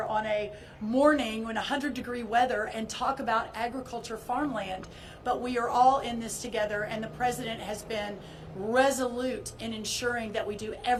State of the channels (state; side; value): identical; both; correlation 1.00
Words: on a morning when 100-degree weather and talk about agriculture, farmland. But we are all in this together, and the president has been resolute in ensuring that we do